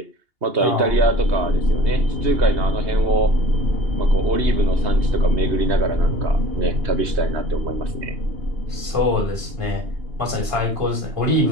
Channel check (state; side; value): late; left; 2.8 ms